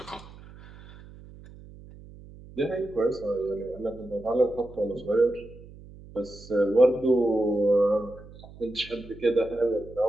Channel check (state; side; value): noise; right; hum, 19 dB below the sound